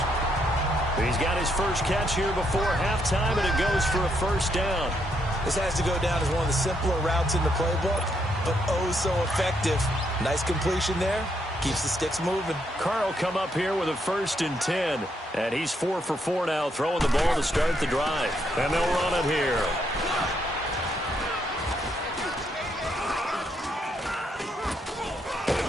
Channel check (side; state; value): both; normal; correlation 0.76